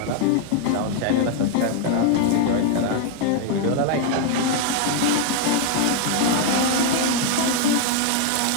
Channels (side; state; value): both; different; correlation 0.00